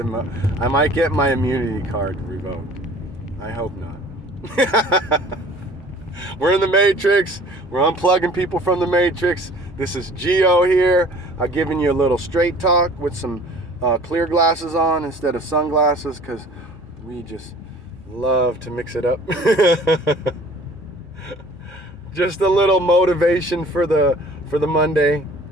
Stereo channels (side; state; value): both; normal; correlation 0.49